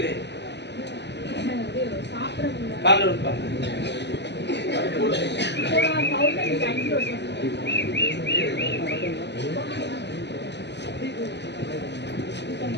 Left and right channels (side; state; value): right; late; 0.50 ms